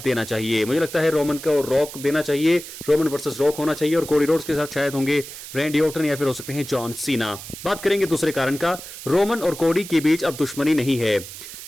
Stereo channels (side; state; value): right; noise; hiss, 13 dB below the sound